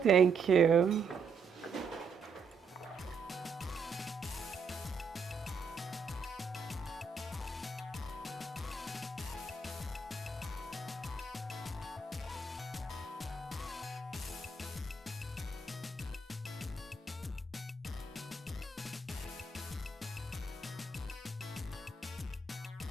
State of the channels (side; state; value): left; quieter; 4.2 dB